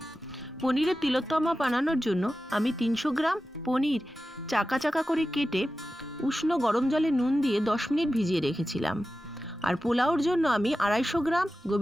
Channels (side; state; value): both; normal; correlation 0.94